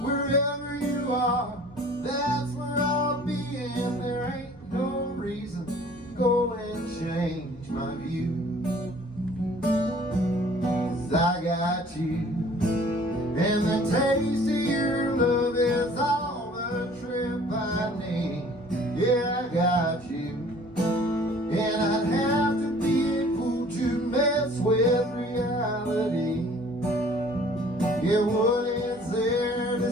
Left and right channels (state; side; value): normal; both; correlation 0.52